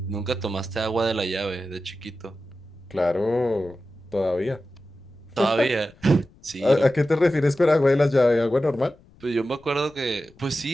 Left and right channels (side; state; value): left; noise; rumble, 26 dB below the sound